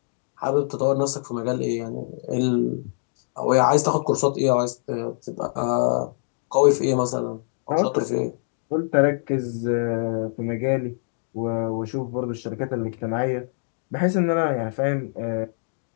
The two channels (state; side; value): silent; right; digital silence